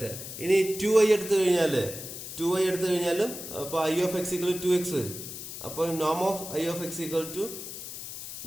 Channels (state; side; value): noise; left; hiss, 9 dB below the sound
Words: ഇനി 2i എടുത്തു കഴിഞ്ഞാലും അപ്പൊ I of X equal to X വരും. അപ്പൊ നോം of I of X equal to